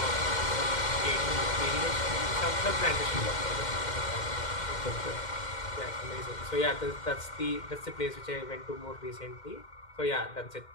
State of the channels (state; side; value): late; right; 2.1 ms